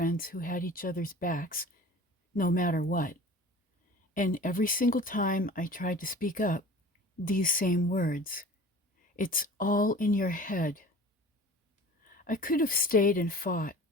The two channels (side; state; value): both; normal; correlation 0.41